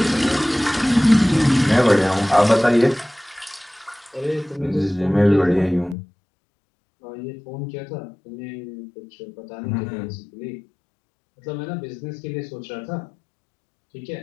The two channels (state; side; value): drops out; right; at 6.0 s